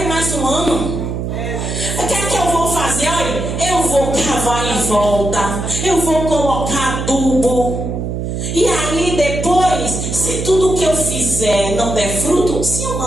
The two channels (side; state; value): right; noise; hum, 3 dB below the sound